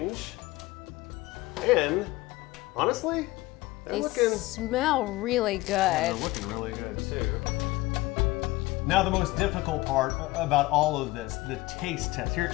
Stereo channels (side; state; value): right; quieter; 19.8 dB